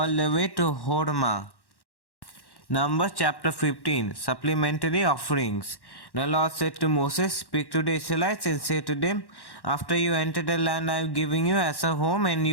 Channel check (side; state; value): right; late; 1.1 ms